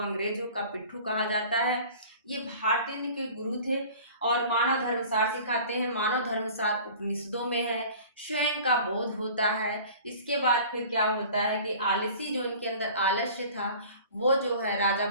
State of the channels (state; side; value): inverted; both; correlation -0.44